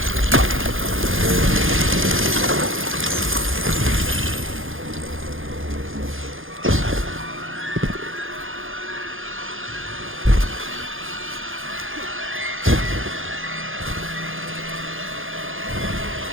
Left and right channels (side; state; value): left; late; 0.59 ms